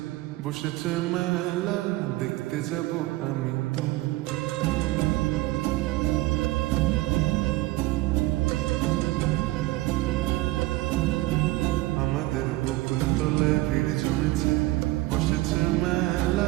বসেছে মেলা, দেখতে যাব আমি তুমি। আমাদের বকুল তলায় ভিড় জমেছে, বসেছে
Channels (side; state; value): left; quieter; 19.0 dB